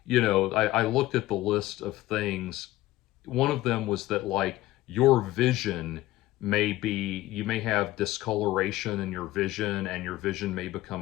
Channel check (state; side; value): quieter; right; 16.6 dB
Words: you know, I looked at the list of things. One of them was that, like, your vision may be, you may have discoloration in your vision, and your vision may